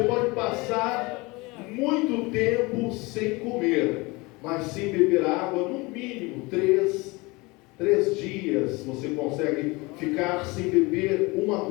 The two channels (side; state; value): right; quieter; 24.5 dB